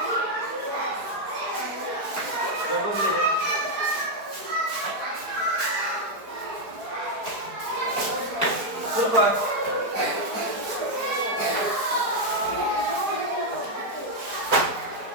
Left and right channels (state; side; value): late; left; 4.6 ms